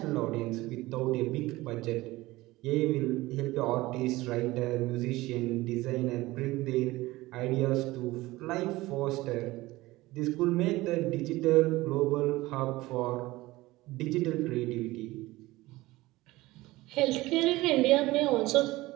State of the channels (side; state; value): left; quieter; 19.1 dB